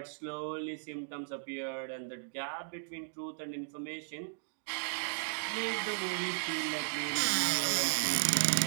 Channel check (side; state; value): left; silent; digital silence